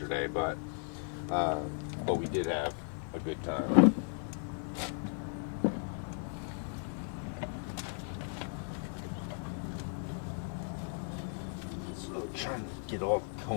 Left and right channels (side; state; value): right; silent; 54 dB below the other